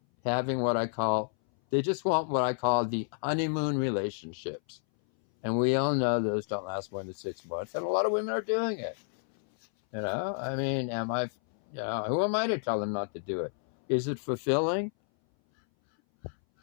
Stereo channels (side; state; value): right; silent; 58 dB below the other